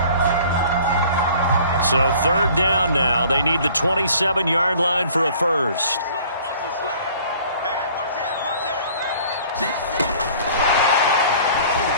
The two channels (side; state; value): both; inverted; correlation -0.51